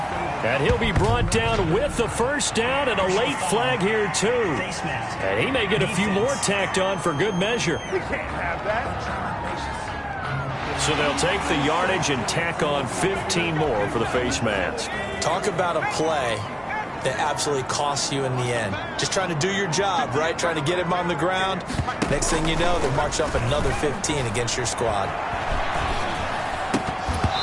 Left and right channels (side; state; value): both; identical; correlation 1.00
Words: And he'll be brought down with the first down and a late flag here, too. And he may get a few more tacked on for good measure. So they'll take the yardage and tack on 15 more for the face mask. Talk about a play that absolutely costs you in the end. Just trying to do your job, right? Trying to get him on the ground. Next thing you know, they march up another 15 against your squad.